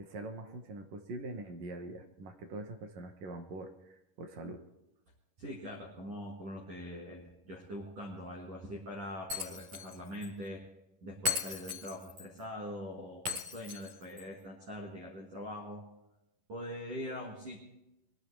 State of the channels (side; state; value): left; late; 11 ms